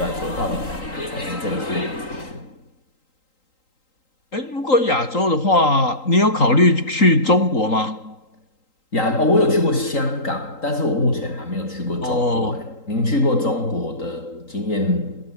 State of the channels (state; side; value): late; right; 3.8 ms